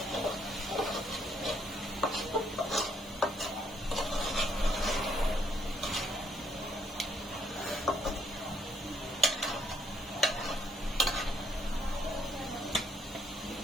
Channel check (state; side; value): normal; both; correlation 0.71